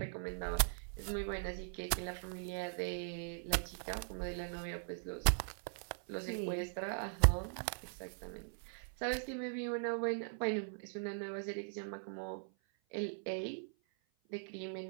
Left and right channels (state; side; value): silent; left; 51 dB below the other